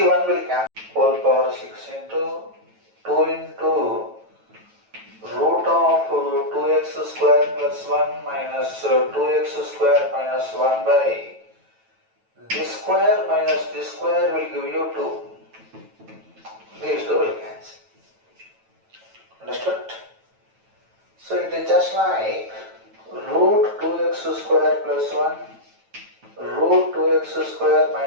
will cancel whole power 6 into 2 into root of 2x square plus 1 minus 2x square minus 1 by this square minus this square will give you 2. These two will cancel. Understood? So it is just like root 2x square plus 1 root 2x square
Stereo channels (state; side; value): late; left; 9.1 ms